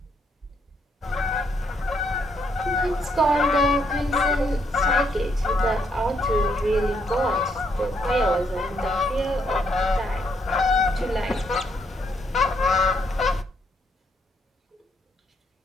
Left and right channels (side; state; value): both; normal; correlation 0.73